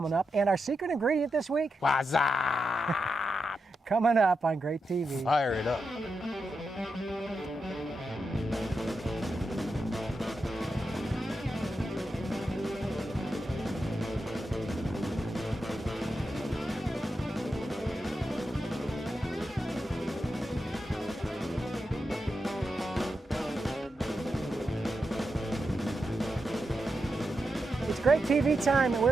up, and our secret ingredient this week, Wasabi! coming up on GrateTV. Fire it up. It's GrateTV time, and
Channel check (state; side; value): normal; both; correlation 0.87